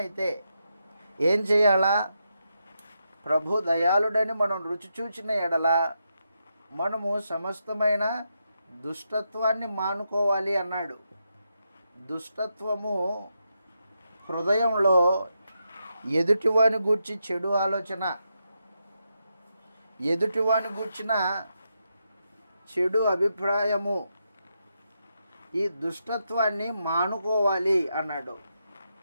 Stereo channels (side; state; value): both; inverted; correlation -0.84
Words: ఏం చేయాలా? ప్రభు దయాళుడని మనం రుచి చూచిన ఎడల మనము సమస్తమైన దుష్టత్వాన్ని మానుకోవాలి అన్నాడు. దుష్టత్వము హృదయంలో ఎదుటివాని గూర్చి చెడు ఆలోచన, ఎదుటివాని గూర్చిన చెడు అభిప్రాయము, ఈ దుష్టత్వాన్ని మానుకోవాలి అన్నాడు.